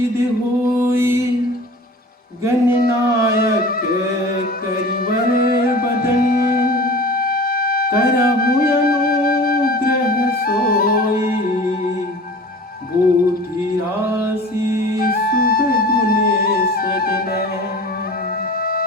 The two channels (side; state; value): both; normal; correlation 0.40